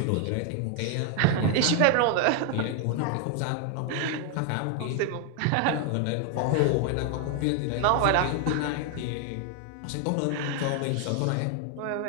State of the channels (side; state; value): both; different; correlation 0.00